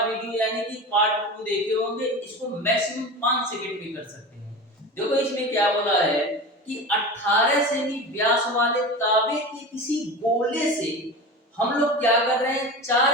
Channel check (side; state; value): both; normal; correlation 0.30